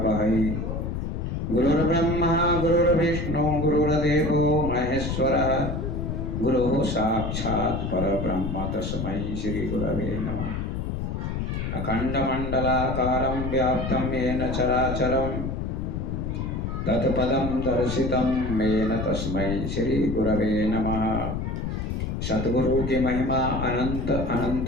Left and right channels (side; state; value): left; noise; rumble, 3 dB below the sound